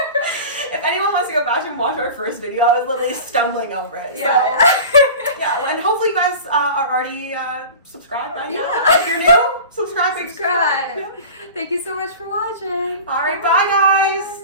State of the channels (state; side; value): inverted; both; correlation -0.36